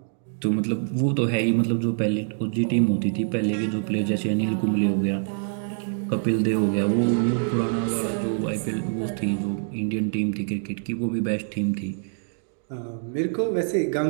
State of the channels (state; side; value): silent; left; digital silence